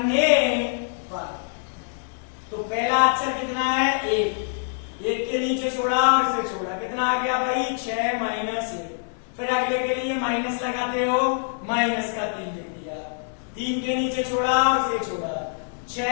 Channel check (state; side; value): silent; right; digital silence